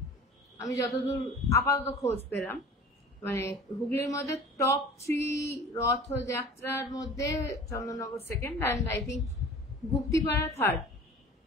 আমি যতদূর আপাতত খোঁজ পেলাম। মানে হুগলির মধ্যে টপ 3 রথযাত্রার মধ্যে Chandannagar second, and I think Guptipara third.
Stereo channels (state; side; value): normal; both; correlation 0.42